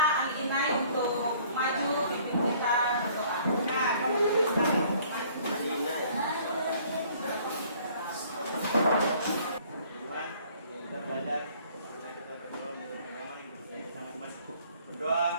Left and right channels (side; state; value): both; inverted; correlation -0.57